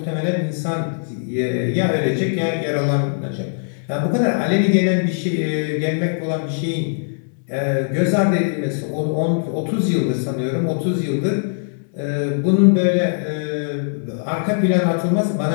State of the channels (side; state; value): right; silent; digital silence